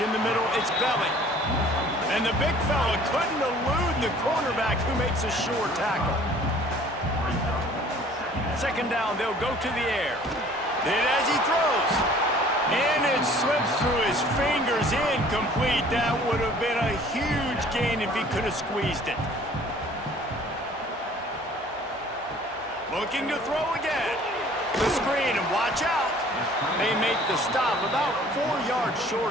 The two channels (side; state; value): both; normal; correlation 0.52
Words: in the middle, it's Belly. And the big fella couldn't elude the cornerback who makes a sure tackle. Second down, they'll go to the air. Then as he throws, and it slips through his fingers. was incomplete. That would have been a huge gain if he could have squeezed it. Looking to throw again. The screen, and watch out. They make the stop about 4 yards